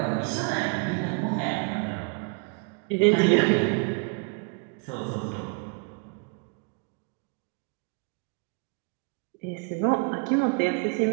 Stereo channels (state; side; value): quieter; left; 32.8 dB